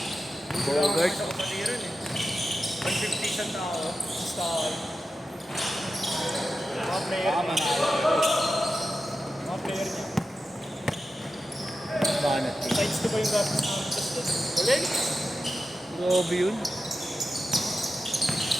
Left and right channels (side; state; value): both; normal; correlation 0.91